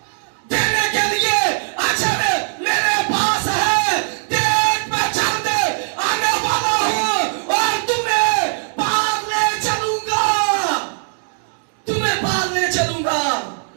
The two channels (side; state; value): left; silent; digital silence